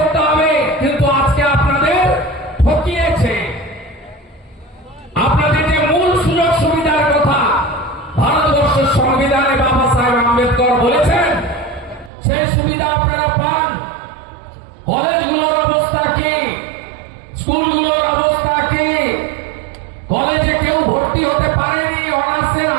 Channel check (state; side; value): drops out; left; at 12.1 s